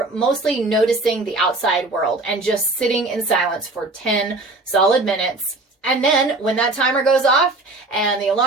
mostly noticing the outside world and just sitting in silence for 10 solid minutes. And then when that timer goes off and the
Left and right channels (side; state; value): left; quieter; 3.1 dB